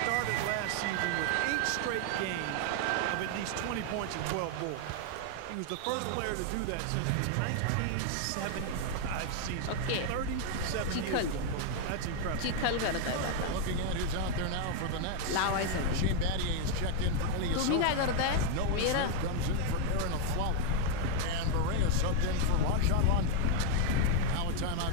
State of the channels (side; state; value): both; different; correlation 0.00